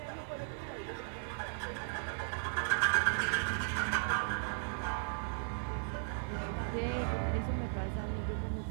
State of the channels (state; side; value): silent; left; digital silence